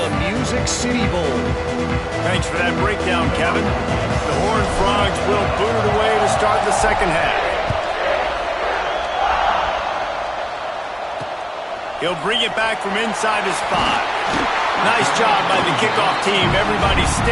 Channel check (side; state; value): both; identical; correlation 1.00